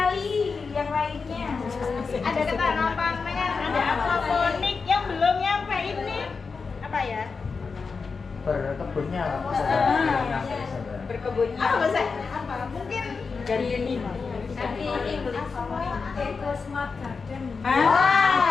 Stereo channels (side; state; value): right; quieter; 4.9 dB